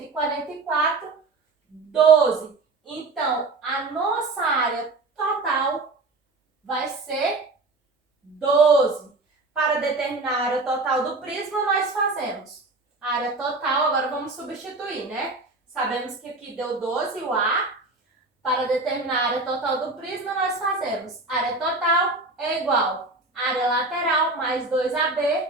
12. Então, a nossa área total vai ser 12. total do prisma nós fazemos. A área total, agora vamos substituir, né? Sabemos que aqui deu 12 o A. Para determinar a área total do prisma, nós fazemos área total é igual a área lateral mais 2AB.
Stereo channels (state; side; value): quieter; left; 3.4 dB